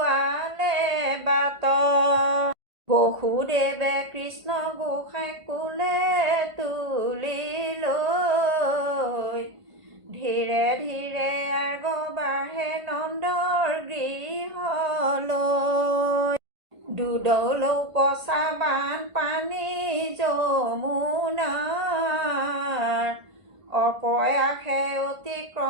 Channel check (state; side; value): late; left; 1.5 ms